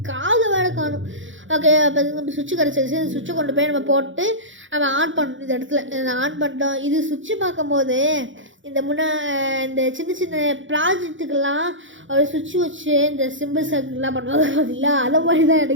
காது வேலை காணும். ஓகே, அப்போ நம்ம சுவிட்சு கிடச்சிருச்சு. இந்த சுவிட்சை கொண்டு போய் நம்ம போட்டு நம்ம ஆன் பண்ணணும். இந்த இடத்துல ஆன் பண்ணிட்டோம். இது சுவிட்சு பார்க்கும்போது இந்த இந்த சின்ன ப்ராஜெக்ட்டுக்கெல்லாம் ஒரு சுவிட்ச் வச்சு இந்த சிம்பிள் சர்க்கிள்லாம் பண்ணுவாங்க பார்த்தீங்களா, அதை மாதிரி தான்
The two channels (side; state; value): left; late; 0.56 ms